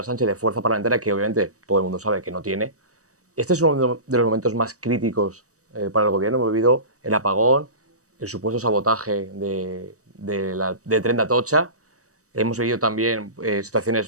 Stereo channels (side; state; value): left; late; 0.66 ms